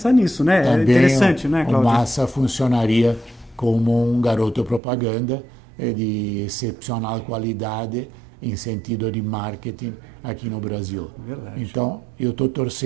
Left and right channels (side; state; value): left; drops out; at 4.8 s